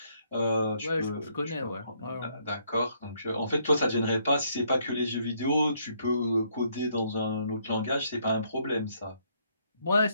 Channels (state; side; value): inverted; both; correlation -0.70